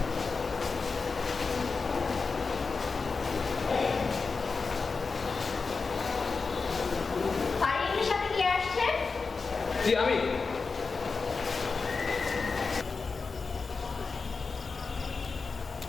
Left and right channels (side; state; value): right; quieter; 4.5 dB